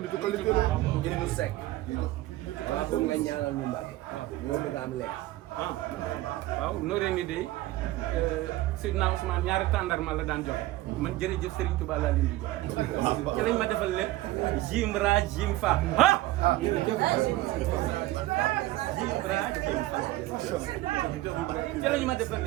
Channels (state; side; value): quieter; left; 17.1 dB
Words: nitu qualité la. Jërëjëf Seck. waaw foog nga ñaanal ñu Mbacke. ñoo bëgg a am leer. ah waaw nooree ni de Seydina Ousmane ñaari tàndarma la daan jox man jërëjëf Serigne Touba laa leen di jox ci lañ ma defal lépp jim ra jim fa ah jim ra jim fa ci lañu ma defal